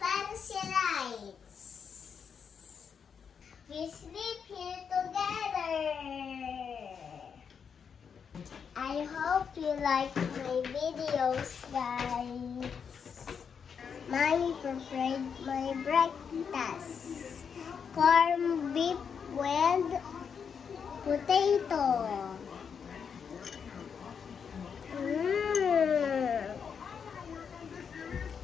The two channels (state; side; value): quieter; right; 6.7 dB